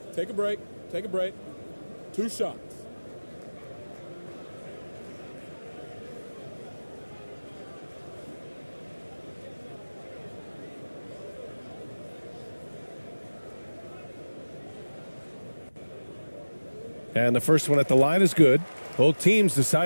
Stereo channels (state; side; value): inverted; both; correlation -1.00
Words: Take a break. Take a break. 2 shots. And the first one at the line is good. Both teams